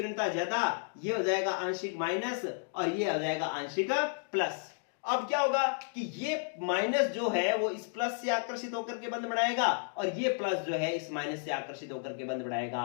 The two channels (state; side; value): silent; right; 56 dB below the other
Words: ज्यादा, ये हो जाएगा आंशिक माइनस और ये हो जाएगा आंशिक प्लस। अब क्या होगा कि ये माइनस जो है वो इस प्लस से आकर्षित होकर के बंध बढ़ाएगा और ये प्लस जो है इस माइनस से आकर्षित होकर के बंध